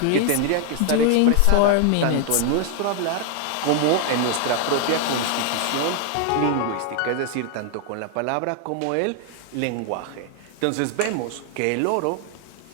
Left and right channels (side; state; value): both; different; correlation 0.00